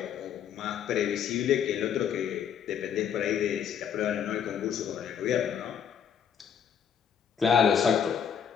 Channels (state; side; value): quieter; right; 8.1 dB